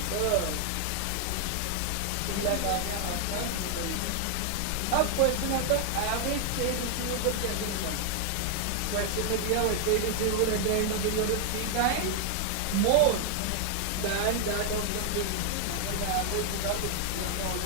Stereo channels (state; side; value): different; both; correlation 0.00